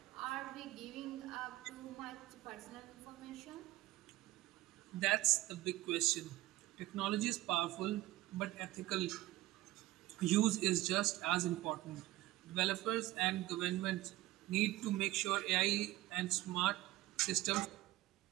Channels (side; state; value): left; quieter; 17.4 dB